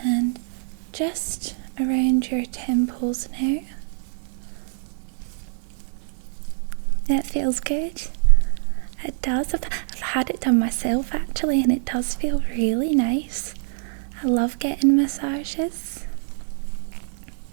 And just around your temples now. That feels good. It does. I've had it done myself actually, and it does feel really nice. I love getting massages.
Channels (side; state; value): left; silent; 62 dB below the other